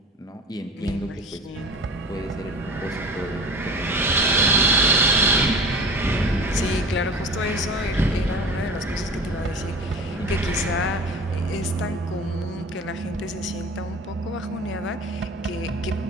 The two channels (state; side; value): normal; both; correlation 0.38